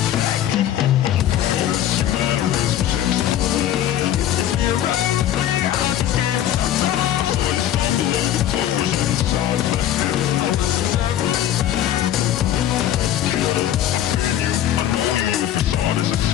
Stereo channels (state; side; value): quieter; right; 11.6 dB